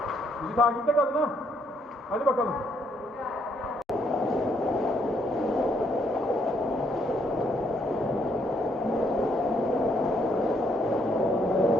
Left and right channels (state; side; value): normal; both; correlation 0.71